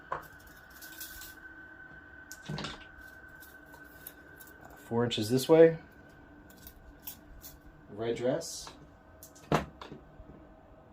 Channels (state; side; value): identical; both; correlation 1.00